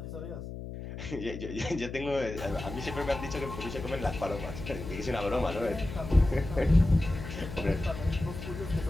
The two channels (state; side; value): noise; left; hum, 9 dB below the sound